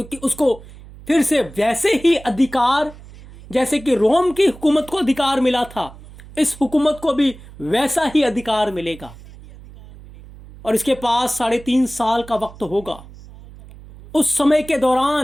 उसको फिर से वैसे ही अधिकार, जैसे कि रोम की हुकूमत को अधिकार मिला था, इस हुकूमत को भी वैसा ही अधिकार मिलेगा। और इसके पास 3.5 साल का वक्त होगा। उस समय के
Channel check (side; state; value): right; noise; hum, 19 dB below the sound